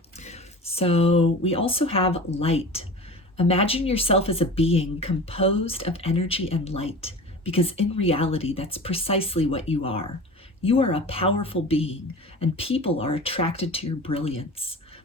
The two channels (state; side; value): normal; both; correlation 0.35